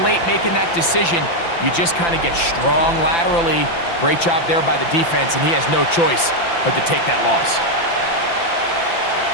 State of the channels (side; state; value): right; late; 5.9 ms